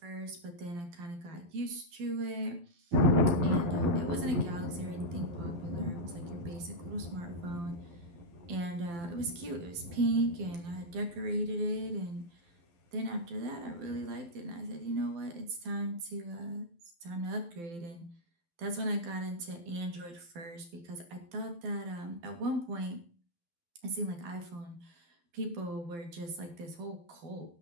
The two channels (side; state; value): left; late; 12 ms